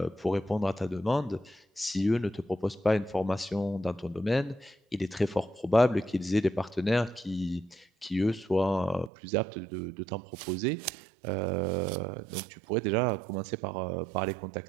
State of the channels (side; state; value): left; drops out; at 9.1 s